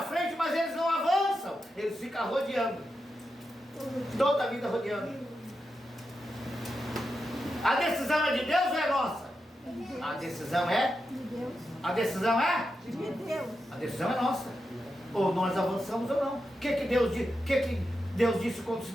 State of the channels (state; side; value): normal; both; correlation 0.88